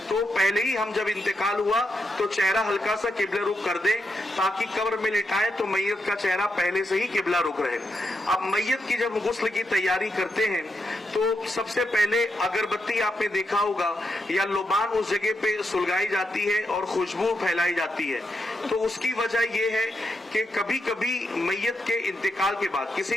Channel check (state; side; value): normal; both; correlation 0.84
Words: تو پہلے ہی ہم جب انتقال ہوا تو چہرہ ہلکا سا قبلہ رخ کر دیں تاکہ قبر میں لٹائیں تو میت کا چہرہ پہلے سے ہی قبلہ رخ رہے۔ اب میت کی جب غسل کی تیاری کرتے ہیں تو سب سے پہلے اگربتی آپ نے دیکھا ہوگا یا لبان اس جگہ پہ سلگائی جاتی ہے اور خوشبو پھیلائی جاتی ہے۔ تو اس کی وجہ یہ ہے کہ کبھی کبھی میت کے انتقال کے بعد،